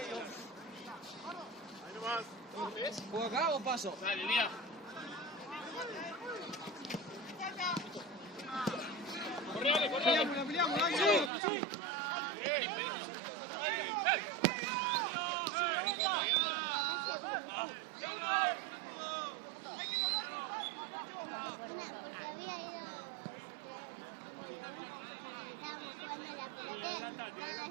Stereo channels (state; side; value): drops out; left; at 11.3 s